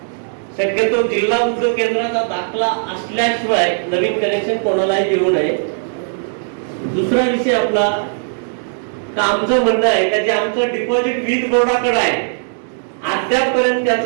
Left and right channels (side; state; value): left; silent; digital silence